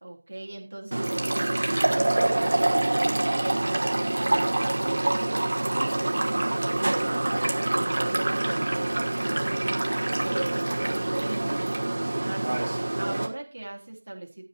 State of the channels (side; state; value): both; inverted; correlation -1.00